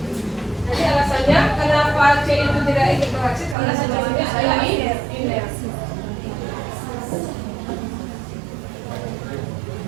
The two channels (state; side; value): drops out; left; at 3.6 s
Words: Jadi alasannya kenapa C itu tidak ikut bereaksi karena senyawanya adalah iner.